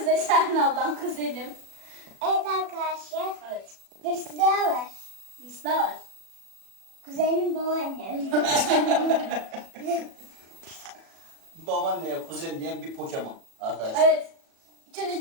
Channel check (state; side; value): late; left; 37 ms